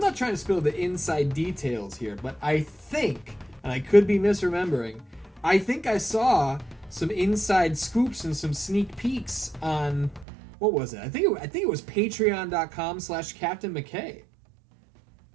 the inside details here, but I think, and I could be misremembering, I think I saw some inside scoops and some sneak peeks on, what was it? I think it was patreon.com/Captain McKay.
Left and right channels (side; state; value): left; drops out; at 10.2 s